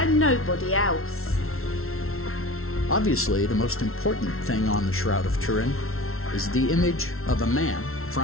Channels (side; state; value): right; late; 0.62 ms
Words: nobody else? Obviously, the most important thing on the Shroud of Turin is the image of a man,